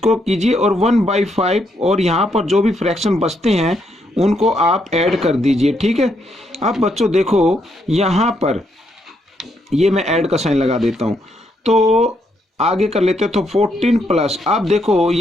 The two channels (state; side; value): normal; both; correlation 0.76